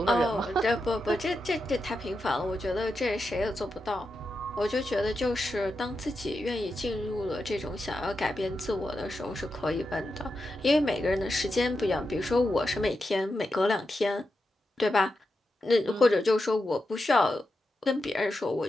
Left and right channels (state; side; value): normal; both; correlation 0.88